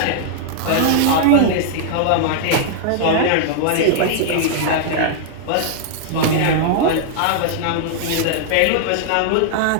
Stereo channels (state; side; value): different; both; correlation -0.01